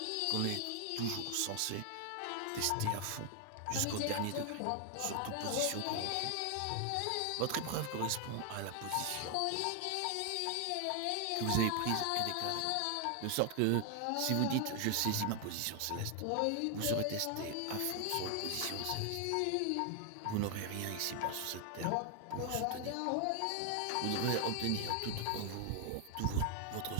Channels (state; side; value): different; both; correlation 0.00